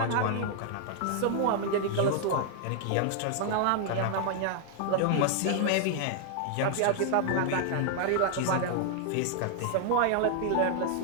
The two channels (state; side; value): different; both; correlation 0.00